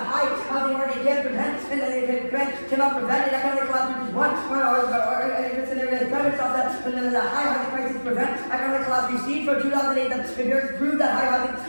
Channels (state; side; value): inverted; both; correlation -1.00